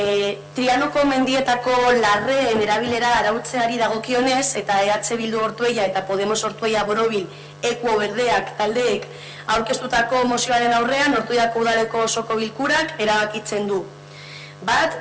Trianoko mendietako larreen erabilera arautzeari dagokionez eta EH Bildu Ortuella eta Podemos Ortuella Borobil Ekuo Berdeak taldeek aurkeztutako mozioaren aurrean Ortuellako udaleko osoko bilkurak erabakitzen du. Bat,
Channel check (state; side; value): identical; both; correlation 1.00